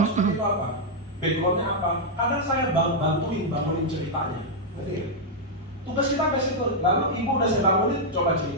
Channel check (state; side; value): normal; both; correlation -0.04